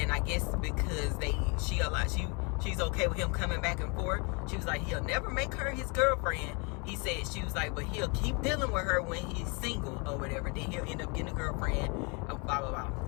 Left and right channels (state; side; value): quieter; right; 32.3 dB